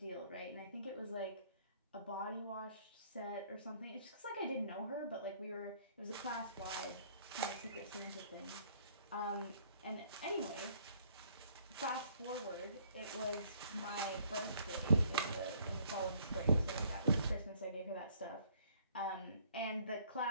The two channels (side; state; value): both; inverted; correlation -0.62